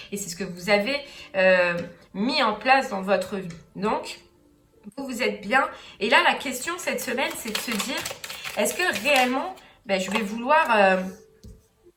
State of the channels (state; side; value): identical; both; correlation 1.00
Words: et c'est ce que vous avez mis en place dans votre vie. Donc, vous êtes bien. Et là, la question cette semaine, c'est de se dire, est-ce que réellement, je vais